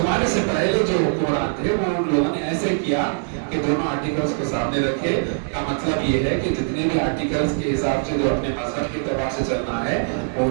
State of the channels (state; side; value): silent; left; digital silence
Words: سے پہلے جو حکمران تھے وہ ان لوگوں نے ایسے کیا کہ دونوں آرٹیکلز کو سامنے رکھے. کا مطلب یہ ہے کہ جتنے بھی آرٹیکلز کے حساب سے جو اپنے مذہب کے اعتبار سے چلنا ہے وہ